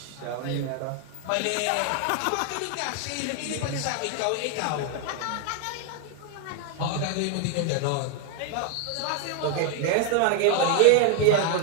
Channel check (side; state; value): both; different; correlation 0.00